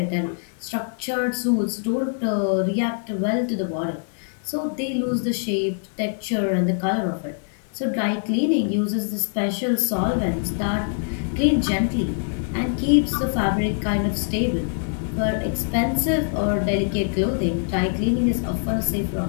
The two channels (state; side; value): silent; right; 63 dB below the other